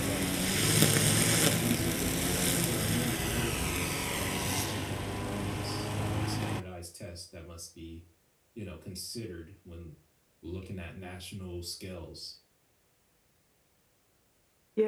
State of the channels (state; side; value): identical; both; correlation 1.00